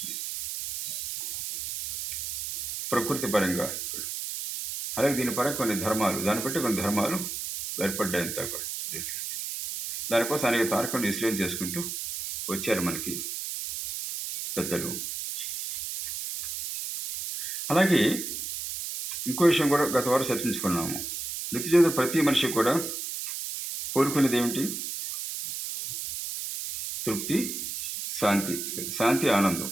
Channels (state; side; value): noise; right; hiss, 5 dB below the sound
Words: ప్రకృతి పరంగా, అలాగే దీని పరంగా కొన్ని ధర్మాలు, దాన్ని బట్టి కొన్ని ధర్మాలు ఏర్పడ్డాయి అంతా కూడా. దానికోసం అనేక తారకాలను విశ్లేషణ చేసుకుంటూ వచ్చారు మనకి పెద్దలు. అలాగే ఇంకో విషయం కూడా గత వారం చర్చించుకున్నాము. నిత్య జీవితంలో ప్రతి మనిషి కూడా కోరుకునేది ఏమిటి? తృప్తి, శాంతి, ఆనందం.